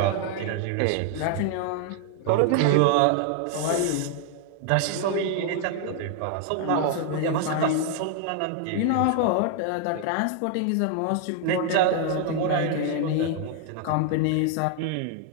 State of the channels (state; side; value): different; both; correlation 0.00